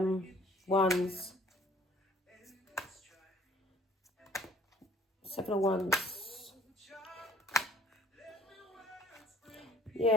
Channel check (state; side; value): normal; both; correlation 0.55